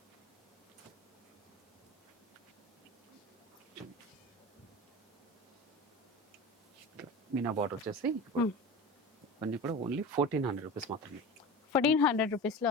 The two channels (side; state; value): both; normal; correlation 0.32